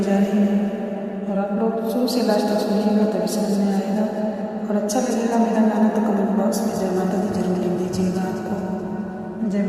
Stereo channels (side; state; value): both; identical; correlation 1.00